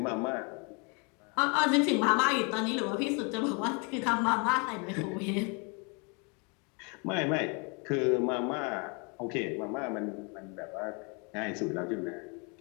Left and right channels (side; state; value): right; quieter; 33.0 dB